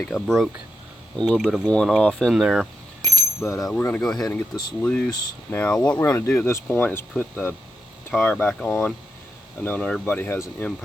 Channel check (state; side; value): normal; both; correlation 0.85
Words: I broke a little bit of one off in there. But we're going to go ahead and get this loose. Now, what we're going to do at this point is put the tire back on. I know not everybody has an